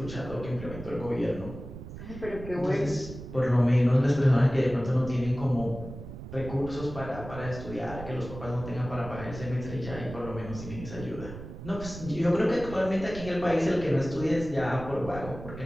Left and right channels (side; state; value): right; noise; rumble, 11 dB below the sound